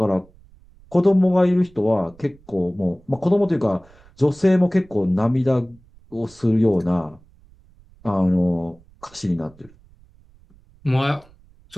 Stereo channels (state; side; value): noise; right; rumble, 27 dB below the sound